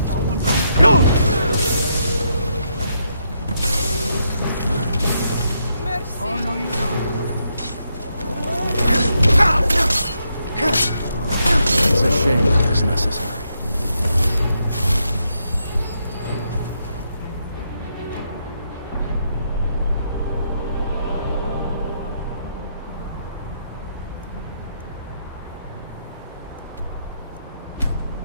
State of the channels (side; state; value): both; inverted; correlation -0.79